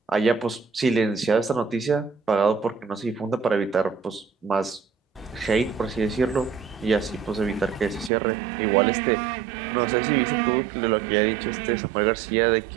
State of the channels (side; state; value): left; drops out; at 8.1 s